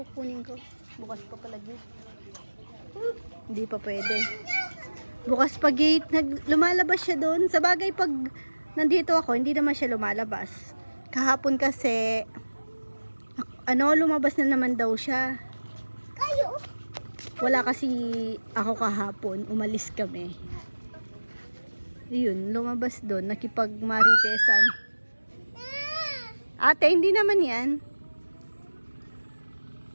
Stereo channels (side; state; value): both; inverted; correlation -1.00